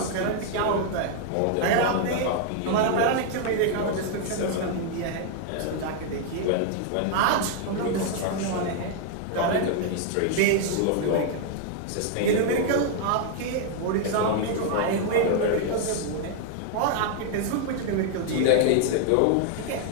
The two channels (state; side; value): different; both; correlation 0.00